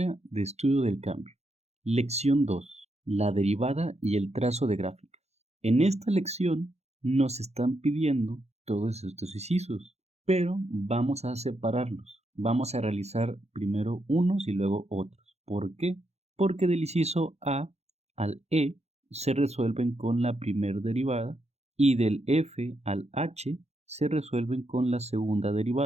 de estudio del cambio. Lección 2. La derivada y el trazo de gráficas. En esta lección nos están pidiendo todos estos incisos, pero vamos a separarlos. Vamos a realizar primero unos y luego otros. ¿Por qué? Porque del inciso A al E se resuelven con la primera derivada y del F al H se resuelven con la segunda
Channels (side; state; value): left; late; 0.31 ms